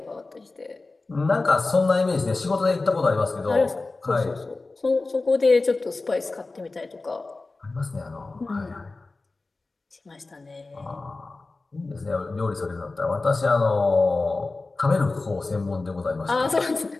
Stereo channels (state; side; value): quieter; right; 3.5 dB